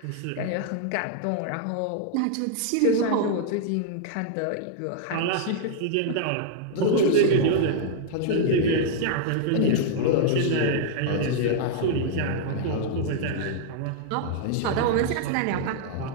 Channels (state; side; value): different; both; correlation -0.01